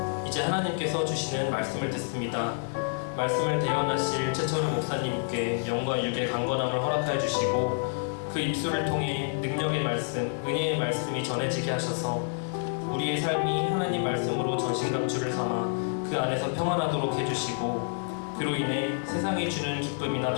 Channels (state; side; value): silent; right; 59 dB below the other